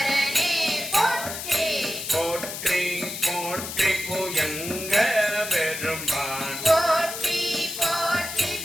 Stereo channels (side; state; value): left; noise; hiss, 7 dB below the sound